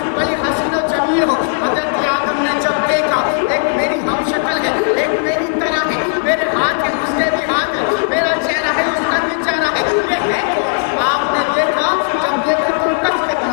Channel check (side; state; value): right; silent; digital silence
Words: بڑی حسین و جمیل ہو۔ حضرت آدم نے جب دیکھا ایک میری ہم شکل ہے، ایک میری طرح ہے، میرے ہاتھ ہے اس کے بھی ہاتھ ہے، میرا چہرہ ہے اس کا بھی چہرہ ہے، یہ ہے کون؟ آپ نے دیکھا، جب دیکھا تو ٹچ